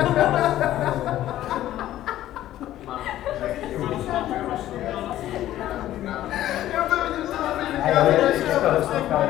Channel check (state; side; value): quieter; right; 13.5 dB